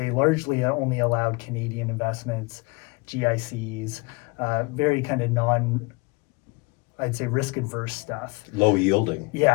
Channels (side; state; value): right; quieter; 26.8 dB